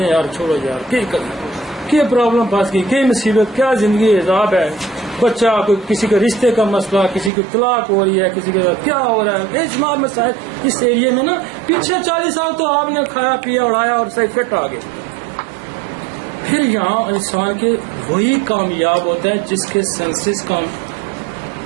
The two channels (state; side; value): drops out; left; at 7.3 s